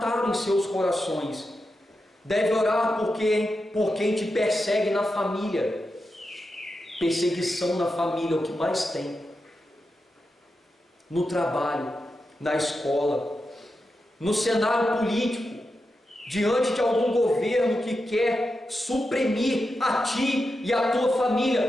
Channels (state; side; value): normal; both; correlation 0.89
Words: em seus corações. Deve orar por quem te persegue na família. Perseguição na família é o que mais tem. No trabalho, na escola, no cenário político, diante de algum governo que quer suprimir a ti e a tua